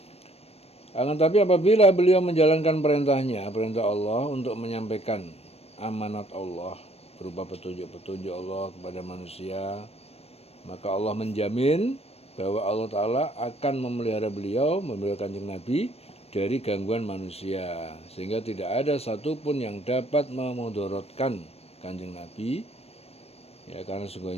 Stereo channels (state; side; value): late; right; 0.29 ms